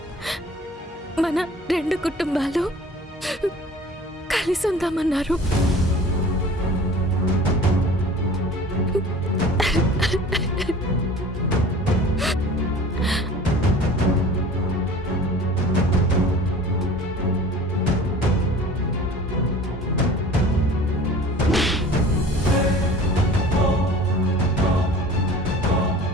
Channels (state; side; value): normal; both; correlation 0.44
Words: మన 2 కుటుంబాలు కలిసి ఉందామన్నారు.